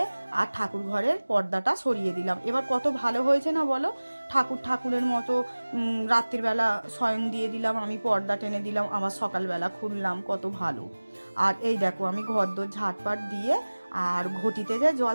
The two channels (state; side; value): inverted; both; correlation -1.00